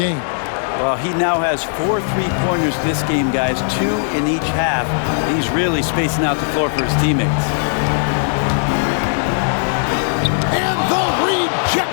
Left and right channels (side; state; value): right; silent; digital silence